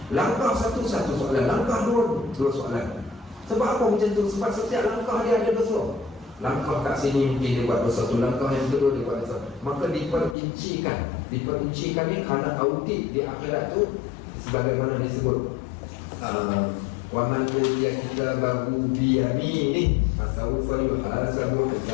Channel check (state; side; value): drops out; right; at 10.4 s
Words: Langkah satu soalan, langkah dua soalan. Sebab apa macam tu? Sebab setiap langkah dia ada dosa. Langkah kat sini mungkin dia buat dosa tu, langkah yang kedua dia buat dosa. Maka diperincikan ni kerana audit di akhirat tu, sebagaimana disebut wa man utiya kitabahu bi yaminihi fasawfa yuhasabu